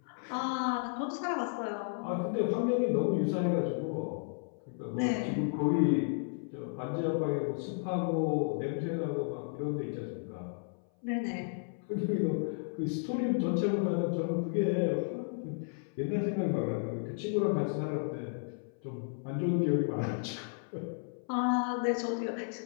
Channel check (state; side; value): silent; right; 56 dB below the other